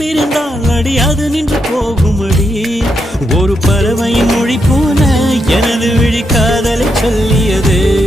அடி அது நின்று போகுமடி. ஒரு பறவையின் மொழி போல எனது விழி காதலை சொல்லியது.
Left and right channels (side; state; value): both; normal; correlation 0.82